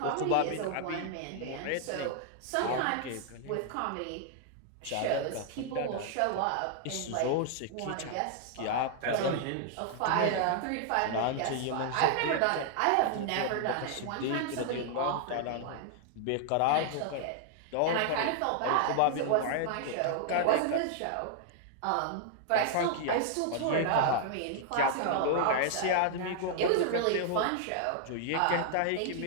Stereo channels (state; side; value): different; both; correlation -0.01